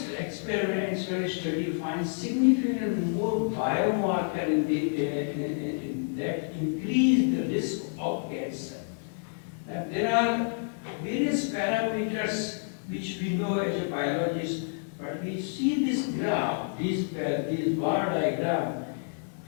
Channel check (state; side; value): silent; right; digital silence